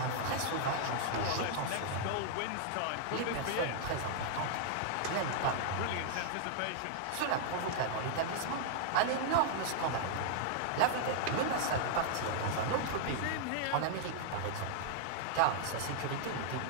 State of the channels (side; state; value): both; different; correlation -0.01